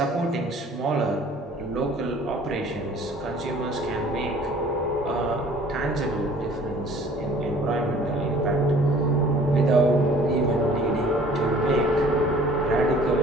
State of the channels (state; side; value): normal; both; correlation 0.52